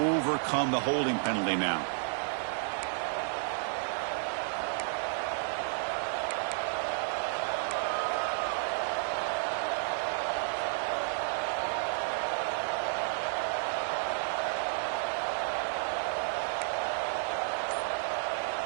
the holding penalty now.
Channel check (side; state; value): left; silent; digital silence